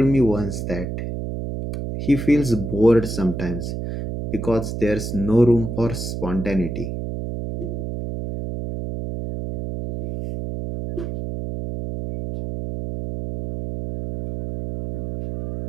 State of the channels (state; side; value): noise; right; hum, 5 dB below the sound